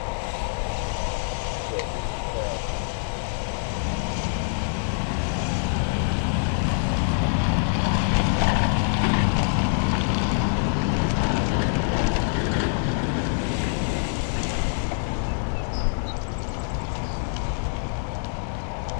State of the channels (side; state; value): right; silent; digital silence